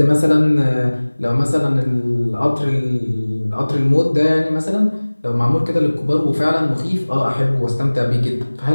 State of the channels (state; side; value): inverted; both; correlation -1.00